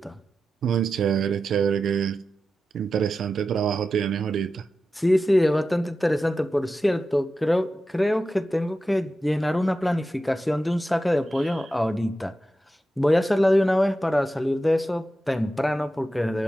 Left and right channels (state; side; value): normal; both; correlation 0.92